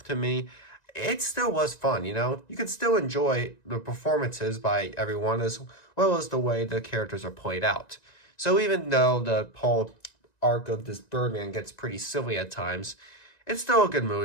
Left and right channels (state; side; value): late; right; 1.9 ms